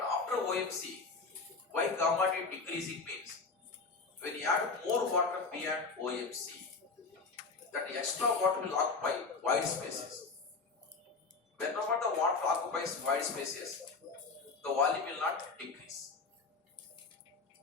after OMC, why gamma D decreasing means when you add more water beyond OMC, that extra water will occupy wide spaces. Whenever the water occupies wide spaces, the volume will not decrease.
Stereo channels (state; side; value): quieter; right; 4.3 dB